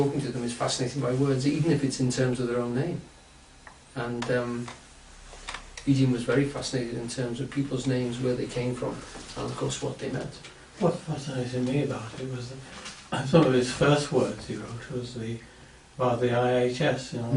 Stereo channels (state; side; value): identical; both; correlation 1.00